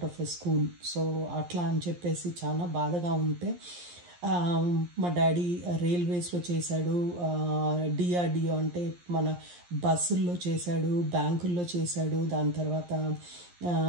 of a school. So అట్లా అని చెప్పేసి చాలా బాధగా ఉంటే మా డాడీ రైల్వేస్లో చేశాడు, డిఆర్డిఓ అంటే మన బస్సుల్లో చేశాడు, బ్యాంకుల్లో చేశాడు, దాని తర్వాత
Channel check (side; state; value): left; late; 11 ms